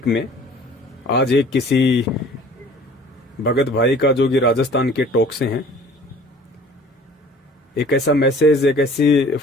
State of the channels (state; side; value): normal; both; correlation 0.49